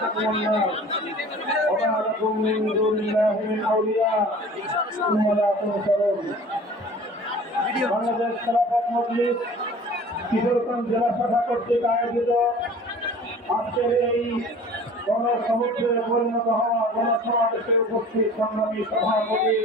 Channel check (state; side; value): normal; both; correlation 0.45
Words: النار وما لكم من دون الله من أولياء ثم لا تنصرون বাংলাদেশ খেলাফত মজলিস কিশোরগঞ্জ জেলা শাখা কর্তৃক আয়োজিত আজকের এই গণসমুদ্রে পরিণত হওয়া গণসমাবেশে উপস্থিত সংগ্রামী সভাপতি